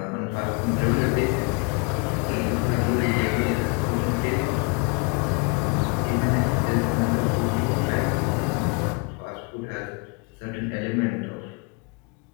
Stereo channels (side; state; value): right; quieter; 31.8 dB